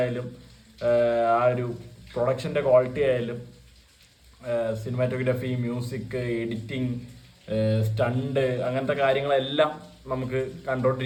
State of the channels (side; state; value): both; identical; correlation 1.00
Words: ആ ഒരു പ്രൊഡക്ഷൻ്റെ ക്വാളിറ്റി ആയാലും സിനിമാറ്റോഗ്രാഫി, മ്യൂസിക്, എഡിറ്റിംഗ്, സ്റ്റണ്ട്, അങ്ങനത്തെ കാര്യങ്ങളെല്ലാം നമുക്ക്